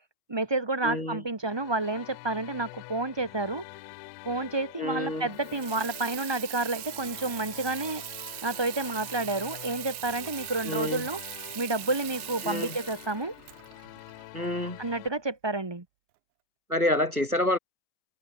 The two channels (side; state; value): left; late; 1.2 ms